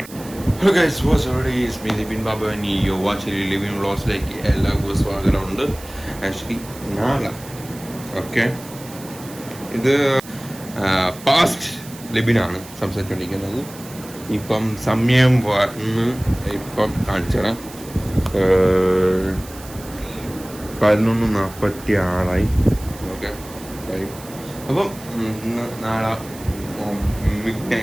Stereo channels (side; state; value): right; noise; hiss, 17 dB below the sound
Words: Hello guys, what's every is me Dipin Babu and you watching living വ്ളോഗ്സിലേക്ക് എല്ലാവർക്കും സ്വാഗതമുണ്ട്. ആക്ച്വലി നാളെ ഇത് പാസ്റ്റ് ലിബിനാണ് സംസാരിച്ചുകൊണ്ടിരിക്കുന്നത്. ഇപ്പം സമയം വന്ന് ഇപ്പം കാണിച്ചുതരാം. 11:46 ഓക്കെ. അപ്പം നാളെ മിഡ്